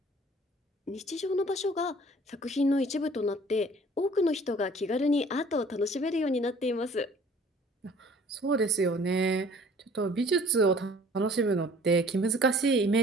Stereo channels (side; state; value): both; normal; correlation 0.53